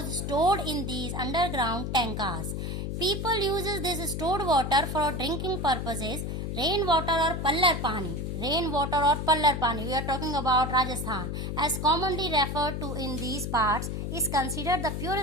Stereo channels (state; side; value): noise; left; hum, 3 dB below the sound